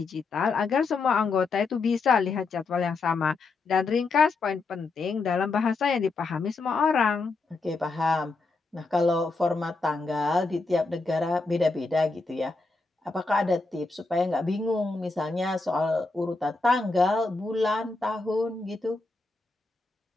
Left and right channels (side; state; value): right; quieter; 3.7 dB